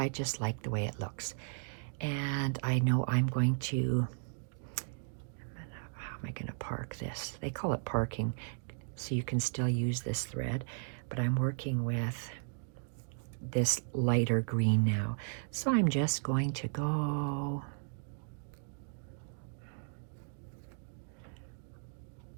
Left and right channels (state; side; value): silent; left; digital silence